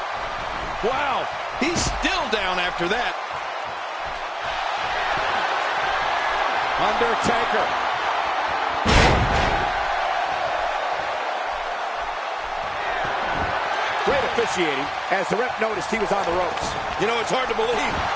Wow, he's still down after that. Undertaker. Great officiating as the ref noticed he was on the ropes. You know, it's hard to believe,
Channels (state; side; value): identical; both; correlation 1.00